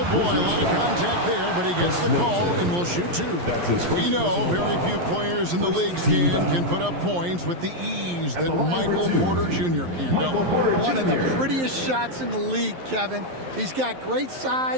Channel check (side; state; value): left; late; 11 ms